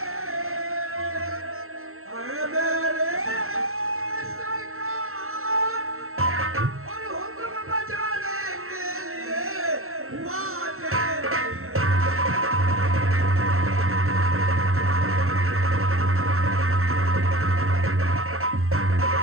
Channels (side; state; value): left; late; 0.62 ms